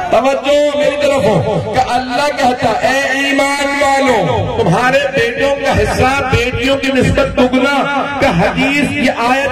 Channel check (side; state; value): both; identical; correlation 1.00